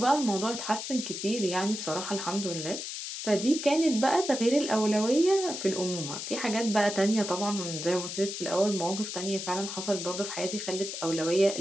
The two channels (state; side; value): noise; left; hiss, 6 dB below the sound